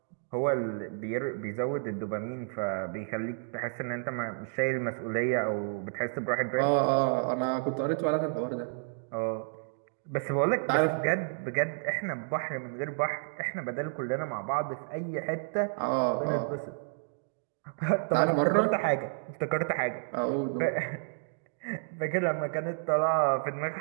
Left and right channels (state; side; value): silent; left; digital silence